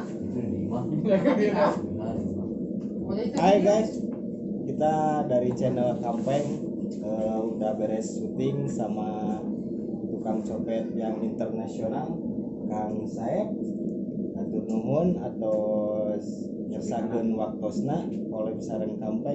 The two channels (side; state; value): both; identical; correlation 1.00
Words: Hai guys, kita dari channel Kampeng udah beres syuting sama tukang copet yang internasional, Kang Saeb, atur nuhun atau ngersakeun waktosna oleh sareng